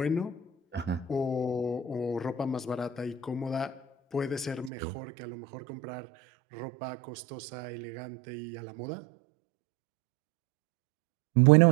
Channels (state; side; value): drops out; left; at 4.7 s